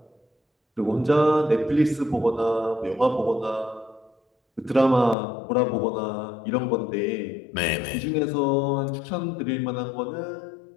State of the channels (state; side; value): drops out; right; at 5.2 s